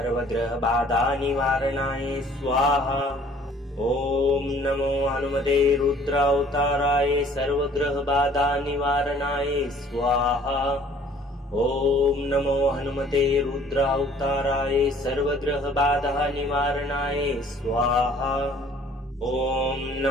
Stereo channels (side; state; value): both; normal; correlation 0.55